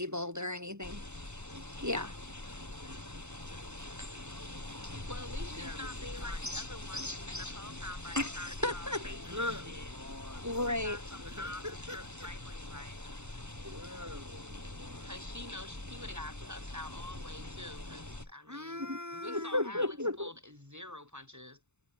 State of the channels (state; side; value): late; left; 0.82 ms